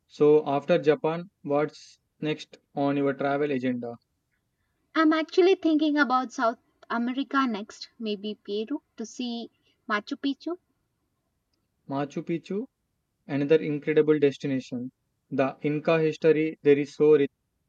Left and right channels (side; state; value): both; identical; correlation 1.00